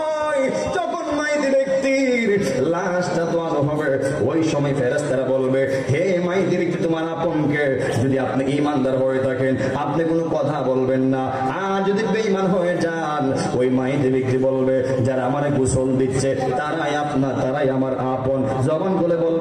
যখন মাইতি ব্যক্তির লাশটা দোয়ানো হবে, ওই সময় ফেরেশতারা বলবে হে মাইতি ব্যক্তি তোমার আপনকে, যদি আপনি ঈমানদার হয়ে থাকেন আপনি কোনো কথা বলবেন না, আর যদি বেঈমান হয়ে যান ওই মাইতি ব্যক্তি বলবে যারা আমারে গোসল দিচ্ছে তারাই আপনার, তারাই আমার আপন। জবান বলে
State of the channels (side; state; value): both; identical; correlation 1.00